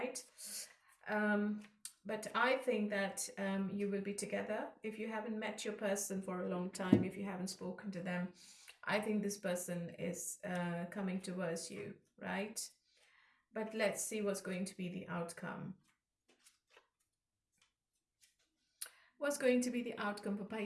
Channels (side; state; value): both; identical; correlation 1.00